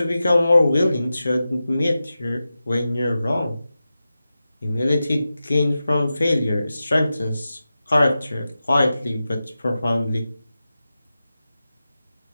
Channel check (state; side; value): inverted; both; correlation -0.93